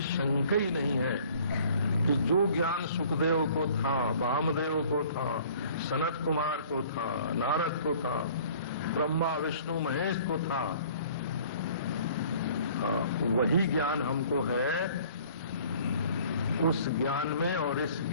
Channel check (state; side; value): inverted; both; correlation -0.53